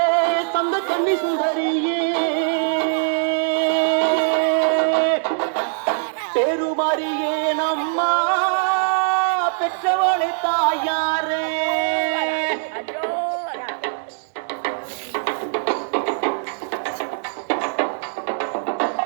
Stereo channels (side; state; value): left; silent; digital silence